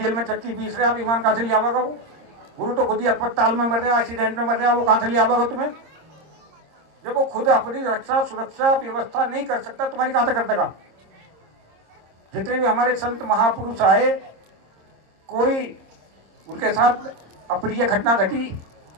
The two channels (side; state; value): left; late; 26 ms